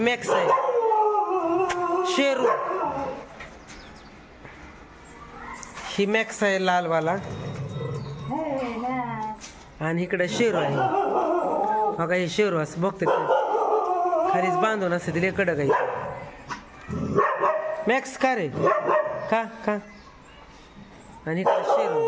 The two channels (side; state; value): both; identical; correlation 1.00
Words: आहे. शेरू ही मॅक्स आहे लालवाला, आणि इकडे शेरू आहे. बघा हे शेरू असं बघते खालीच बांधून असते तिला कडक आहे. मॅक्स का रे का का, आणि इकडे